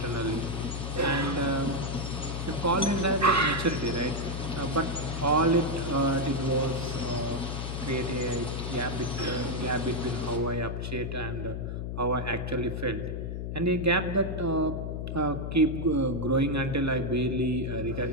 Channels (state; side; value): noise; left; hum, 4 dB below the sound